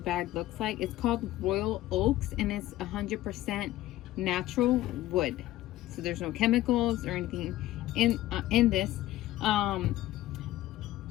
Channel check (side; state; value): right; quieter; 15.5 dB